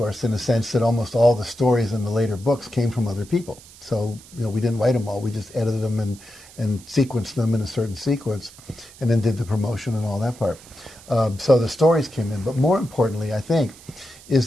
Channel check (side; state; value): right; noise; hiss, 21 dB below the sound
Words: in the sense that almost all the stories in the later books came from other people. So, we didn't write them all. We just edited them and sequenced them in a certain sequence and then did the promotion and all that part. So the stories came in. But more importantly, I think,